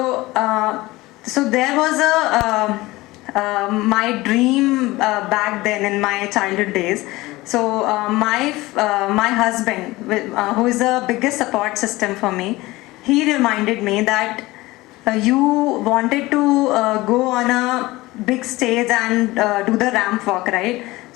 there was my dream back then in my childhood days. So my husband, who is the biggest support system for me, he reminded me that you wanted to go on a big stage and do the ramp walk, right?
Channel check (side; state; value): right; quieter; 19.8 dB